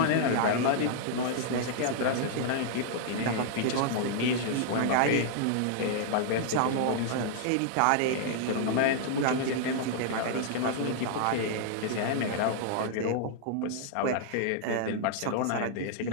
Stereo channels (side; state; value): both; different; correlation -0.01